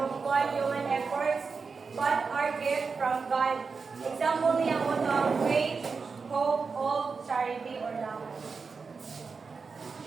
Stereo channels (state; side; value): quieter; left; 4.9 dB